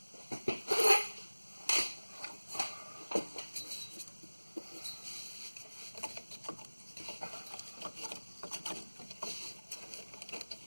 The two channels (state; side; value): inverted; both; correlation -1.00